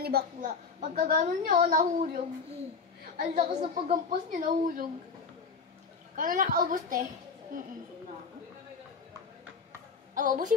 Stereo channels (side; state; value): right; quieter; 5.1 dB